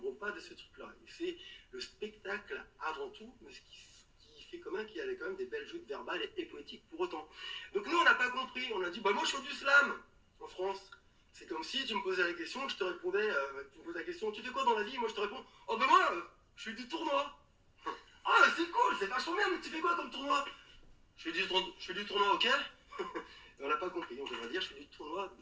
pas de ce truc-là. C'est le spectacle avant tout, mais ce qui fait quand même qu'il y avait quand même des belles joutes verbales et poétiques pour autant. Donc nous, on n'a pas compris. On a dit, bah moi, je fais du slam en France. C'est comme si tu me posais la question, je te répondais, tu me posais la question, tu fais quoi dans la vie? Moi, je te réponds, oh ben moi, je fais du tournoi. Ah, c'est cool, c'est vachement bien, mais tu fais quoi comme tournoi? Je fais du tournoi, ok? On n'a pas compris, on devrait dire, je fais du tournoi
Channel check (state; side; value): identical; both; correlation 1.00